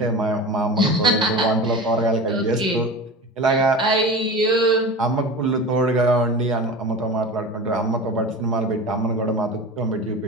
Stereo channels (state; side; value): normal; both; correlation 0.31